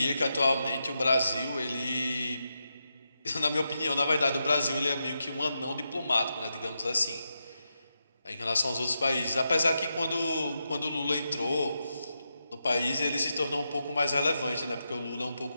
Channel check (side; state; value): both; inverted; correlation -0.86